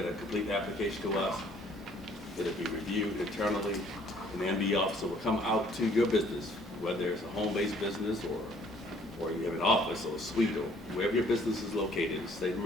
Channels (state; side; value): normal; both; correlation 0.60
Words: a complete application to us, it'll be reviewed internally, and the MD officer will come out to your business, whether it's a home-based business or you have an office or a suite or wherever your business is located in the state of